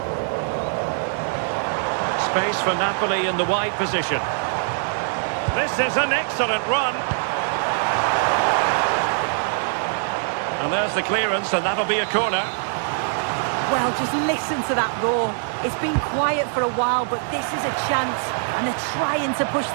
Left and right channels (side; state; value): left; silent; 62 dB below the other